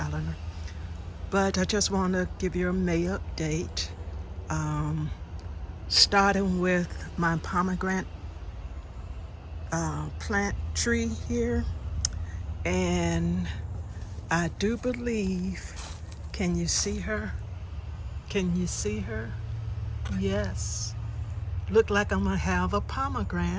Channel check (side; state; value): both; identical; correlation 1.00